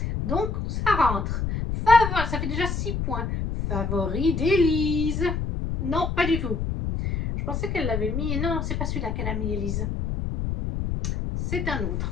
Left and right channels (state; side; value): noise; left; rumble, 2 dB below the sound